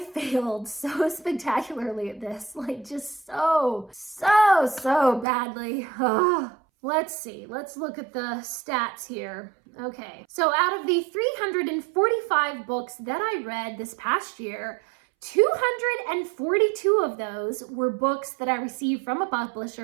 failed so spectacularly at this, like just so badly. Let's see. Let's look at the stats here. Okay. So out of the 345 books that I read this past year, 242 of those were books that I received from a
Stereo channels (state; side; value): drops out; left; at 5.2 s